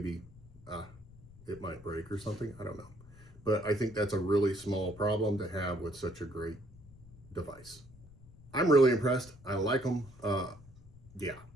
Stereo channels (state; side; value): noise; left; rumble, 21 dB below the sound